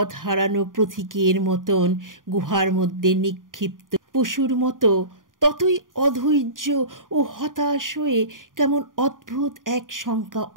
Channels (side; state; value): left; late; 0.89 ms